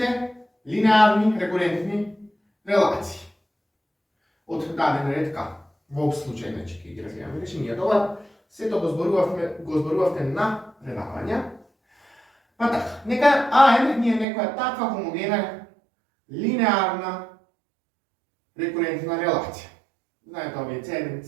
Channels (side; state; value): left; drops out; at 14.2 s